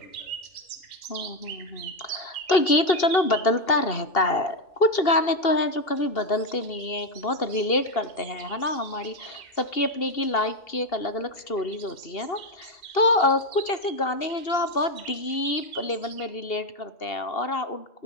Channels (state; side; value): late; right; 2.7 ms